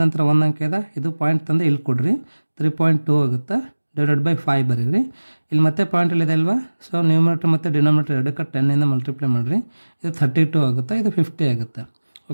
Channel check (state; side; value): inverted; both; correlation -1.00